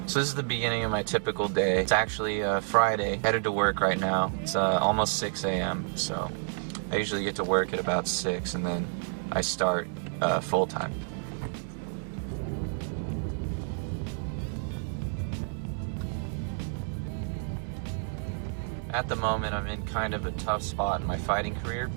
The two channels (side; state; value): left; silent; 58 dB below the other